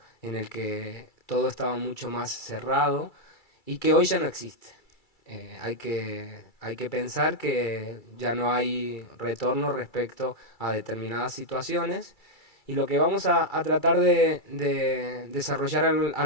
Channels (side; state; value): right; late; 2.3 ms